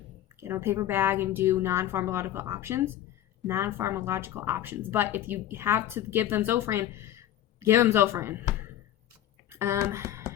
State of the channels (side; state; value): right; quieter; 12.3 dB